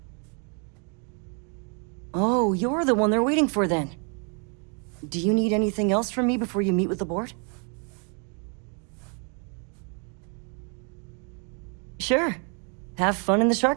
Oh, you're the one they're waiting for then. Do you need anything else from me before you meet with the board? Sure. Have fun in the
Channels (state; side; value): quieter; left; 37.7 dB